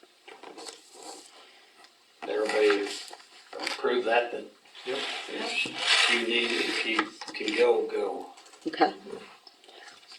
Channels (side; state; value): both; identical; correlation 1.00